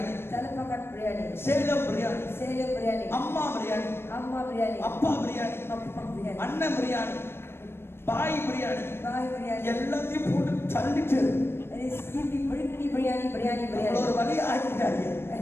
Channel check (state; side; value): late; right; 0.12 ms